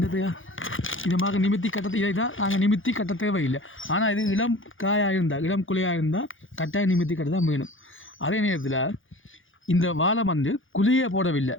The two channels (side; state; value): right; late; 0.58 ms